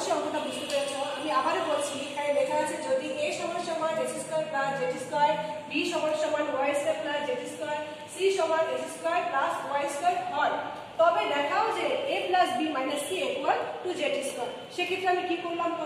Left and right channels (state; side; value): identical; both; correlation 1.00